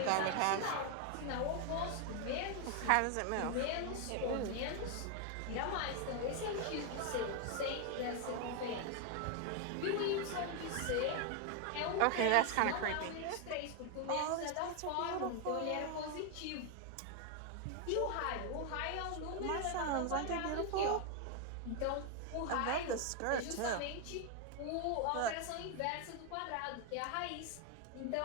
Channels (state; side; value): different; both; correlation 0.01